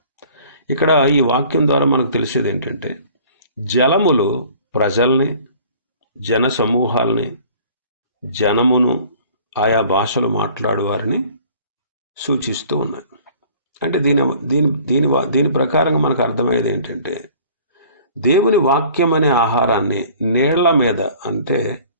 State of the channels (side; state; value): both; inverted; correlation -0.51